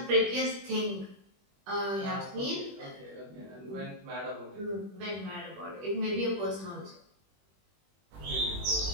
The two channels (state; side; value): late; left; 21 ms